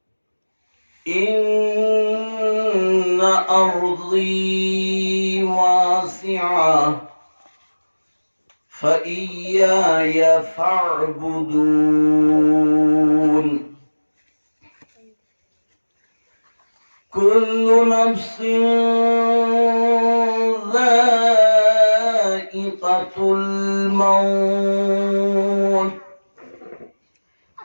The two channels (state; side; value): inverted; both; correlation -1.00